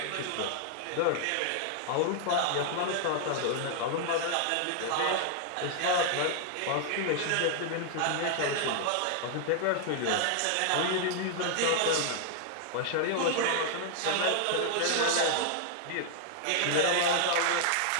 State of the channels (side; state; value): both; different; correlation 0.00